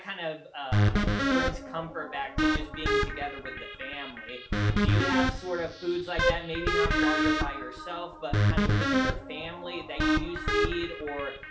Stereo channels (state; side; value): identical; both; correlation 1.00